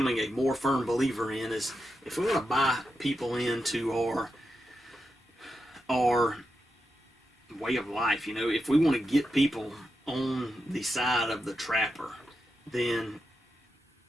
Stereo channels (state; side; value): normal; both; correlation 0.87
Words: a more firm believer in is, if we want to buy people into our way of life, if we want to get people on the side of the trapper, then